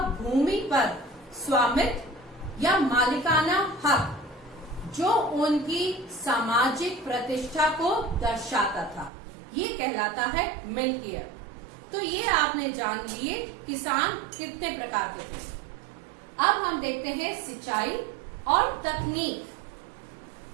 भूमि पर स्वामित्व या मालिकाना हक, जो उनकी सामाजिक प्रतिष्ठा को दर्शाता था, ये कहलाता है मिल्कियत। तो ये आपने जान लिए किसान कितने प्रकार के थे। अब हम देखते हैं सिंचाई और तकनीक।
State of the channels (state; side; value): drops out; left; at 9.1 s